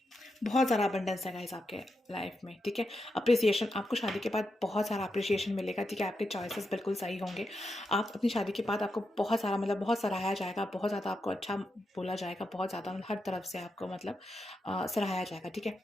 बहुत सारा अबंडेंस है गाइस आपके लाइफ में, ठीक है। अप्रिसिएशन, आपको शादी के बाद बहुत सारा अप्रिसिएशन मिलेगा, ठीक है। आपके चॉइसेस बिल्कुल सही होंगे। आप अपनी शादी के बाद आपको बहुत सारा, मतलब बहुत सराहाया जाएगा, बहुत ज़्यादा आपको अच्छा बोला जाएगा, बहुत ज़्यादा मतलब हर तरफ से आपको मतलब सराहाया जाएगा, ठीक है।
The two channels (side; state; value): both; normal; correlation 0.86